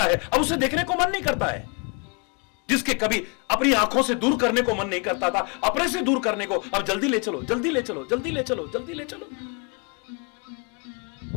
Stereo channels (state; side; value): quieter; right; 33.9 dB